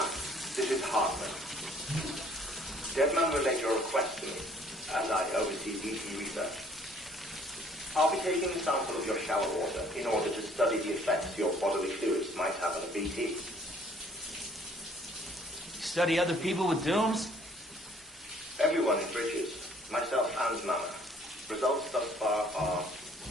this is Hartman. Deadman relayed your request to me, as I oversee BT research. I'll be taking a sample of your shower water in order to study the effects your bodily fluids might have on a BT. Study other people with dooms? Everyone in Bridges, myself and Mama. Results thus far are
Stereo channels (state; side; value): normal; both; correlation 0.59